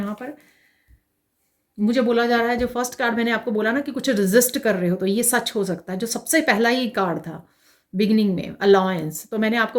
पर मुझे बोला जा रहा है, जो फर्स्ट कार्ड मैंने आपको बोला ना कि कुछ रेजिस्ट कर रहे हो, तो ये सच हो सकता है। जो सबसे पहला ही कार्ड था बिगिनिंग में, अलायंस, तो मैंने आपको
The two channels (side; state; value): both; identical; correlation 1.00